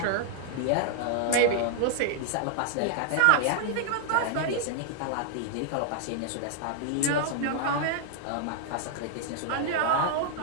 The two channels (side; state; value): both; different; correlation -0.01